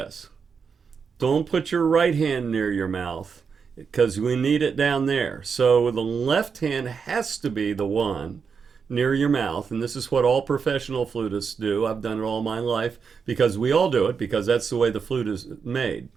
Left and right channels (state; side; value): quieter; left; 5.9 dB